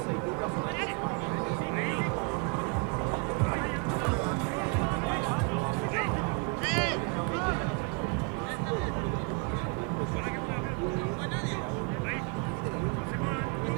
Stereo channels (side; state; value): left; quieter; 29.8 dB